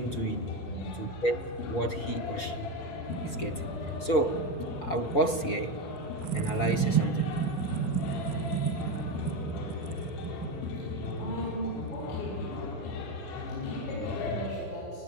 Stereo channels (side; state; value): right; late; 5.1 ms